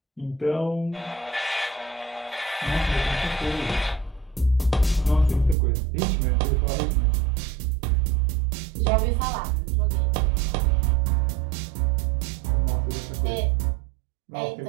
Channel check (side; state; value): left; drops out; at 5.6 s